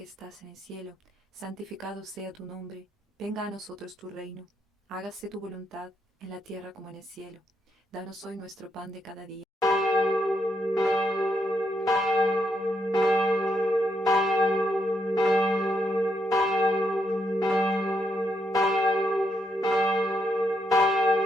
estás en el cielo, santificado sea tu nombre. Venga a nosotros tu reino. Hágase tu voluntad, en la tierra como en el cielo. Danos hoy nuestro pan de cada día.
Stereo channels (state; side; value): normal; both; correlation 0.78